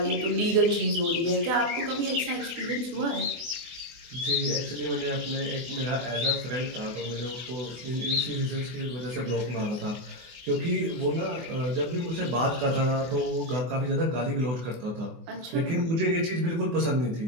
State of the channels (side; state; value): left; late; 24 ms